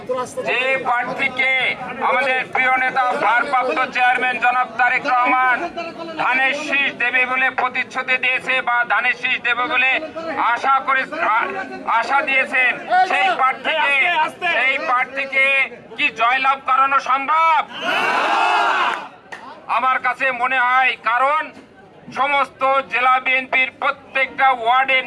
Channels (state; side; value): identical; both; correlation 1.00